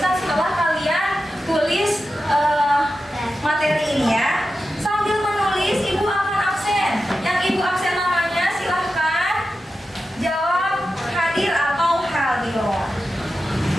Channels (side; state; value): both; normal; correlation 0.91